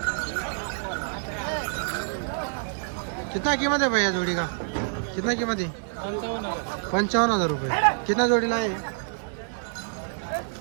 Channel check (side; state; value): left; silent; 60 dB below the other